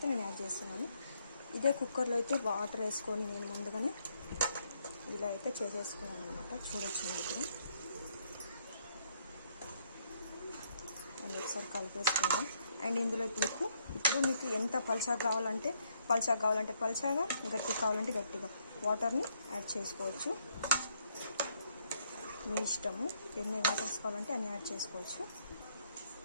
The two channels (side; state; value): both; inverted; correlation -0.71